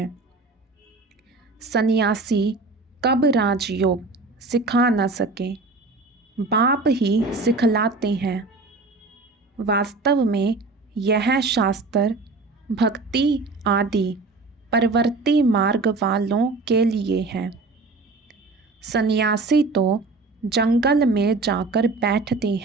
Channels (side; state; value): left; quieter; 3.6 dB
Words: सन्यासी कब राजयोग सिखा न सके, बाप ही सिखलाते हैं। वास्तव में यह शास्त्र भक्ति आदि परवर्ती मार्ग वालों के लिए है। सन्यासी तो जंगल में जाकर बैठते